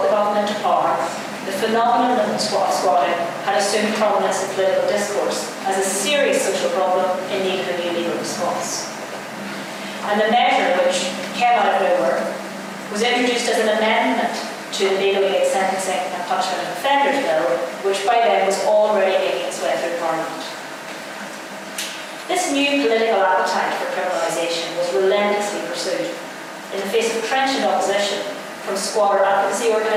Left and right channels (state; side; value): identical; both; correlation 1.00